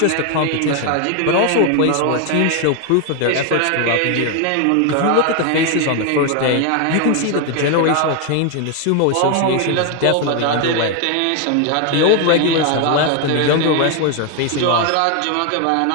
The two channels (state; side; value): different; both; correlation 0.01